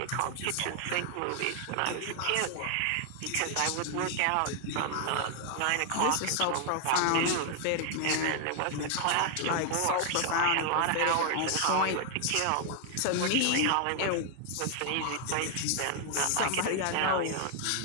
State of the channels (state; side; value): different; both; correlation 0.00